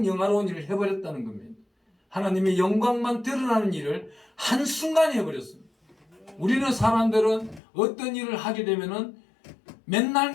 영화로운 일을 해버렸다는 겁니다. 하나님의 영광만 드러나는 일을 한순간에 해버렸습니다. 우리는 사람들은 어떤 일을 하게 되면은 맨날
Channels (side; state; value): right; drops out; at 7.6 s